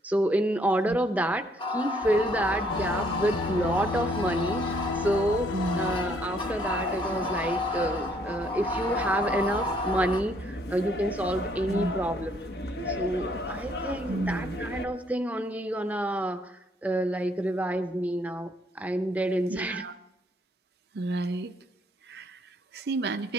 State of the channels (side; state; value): both; normal; correlation 0.67